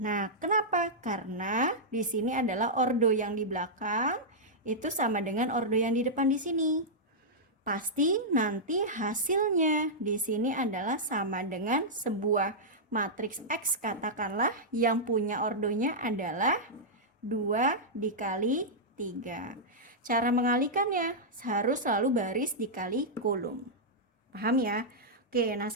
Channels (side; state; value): both; normal; correlation -0.09